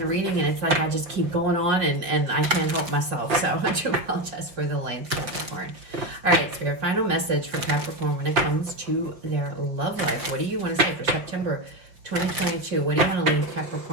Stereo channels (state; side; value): late; left; 5.6 ms